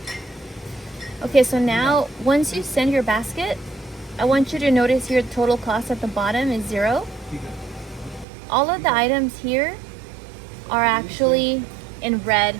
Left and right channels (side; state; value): left; drops out; at 8.2 s